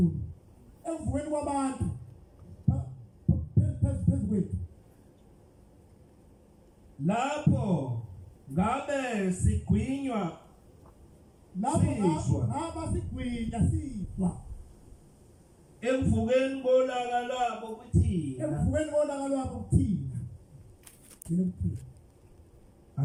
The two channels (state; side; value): identical; both; correlation 1.00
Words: ekuvukeni kwabantu phezukwethu lapho ngabe sigwinywa lapho siswa ngaba sigwinya siswa ekuvukeni kolaka lwabo kuthina. Ekuvukeni kolaka lwabo kuthina. Yini ukuthina?